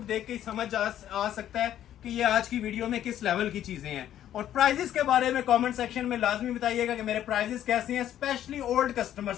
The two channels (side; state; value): right; quieter; 11.4 dB